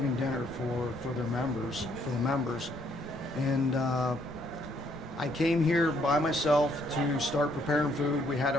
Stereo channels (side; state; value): both; normal; correlation 0.68